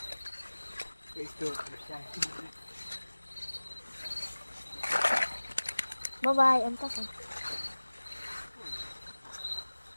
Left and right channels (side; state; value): both; inverted; correlation -1.00